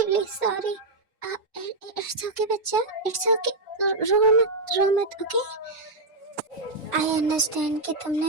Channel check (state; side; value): quieter; left; 3.0 dB